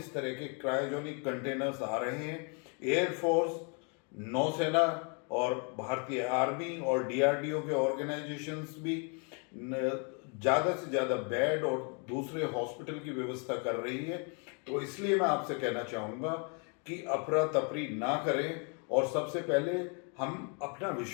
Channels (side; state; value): right; quieter; 36.9 dB